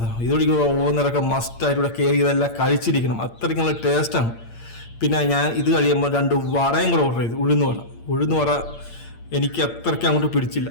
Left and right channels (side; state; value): right; late; 8.7 ms